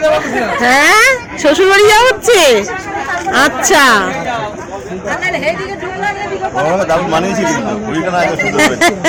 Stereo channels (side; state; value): both; identical; correlation 1.00